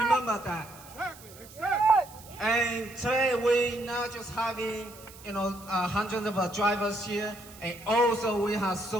that. And today we're not just having hundreds of drivers here, and also we have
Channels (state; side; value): noise; right; hiss, 20 dB below the sound